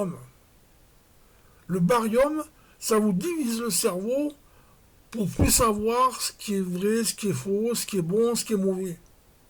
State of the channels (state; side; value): identical; both; correlation 1.00